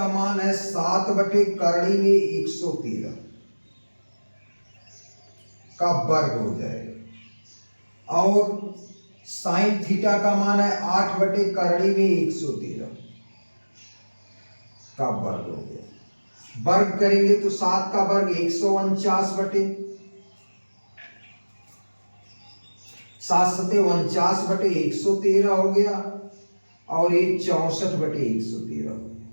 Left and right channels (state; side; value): inverted; both; correlation -1.00